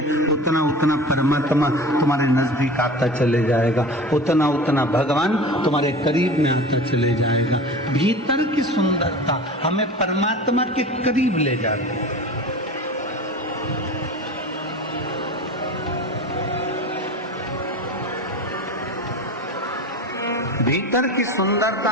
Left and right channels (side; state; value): both; normal; correlation 0.35